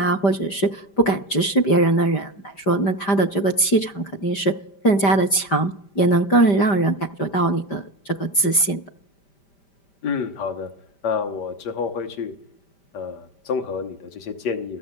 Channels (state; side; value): late; right; 5.1 ms